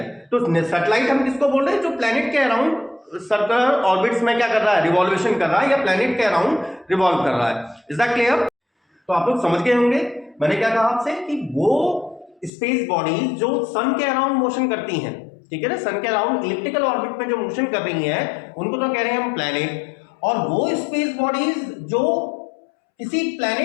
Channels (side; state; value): right; drops out; at 12.5 s